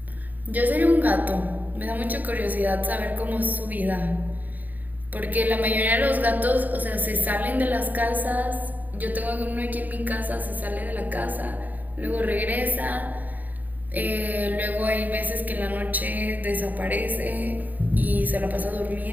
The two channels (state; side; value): late; left; 0.083 ms